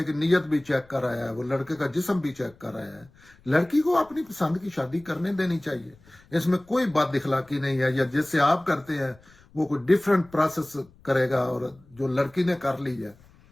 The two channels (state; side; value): noise; left; rumble, 28 dB below the sound